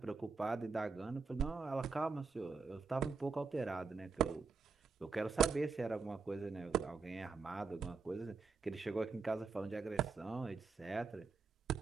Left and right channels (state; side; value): quieter; left; 4.8 dB